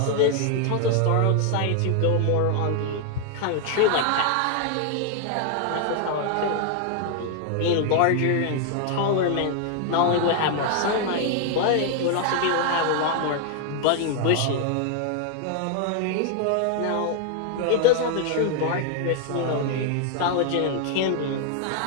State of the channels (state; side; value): different; both; correlation 0.00